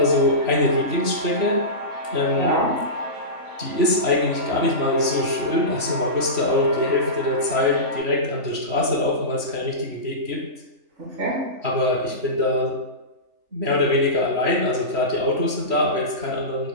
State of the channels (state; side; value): late; left; 3.4 ms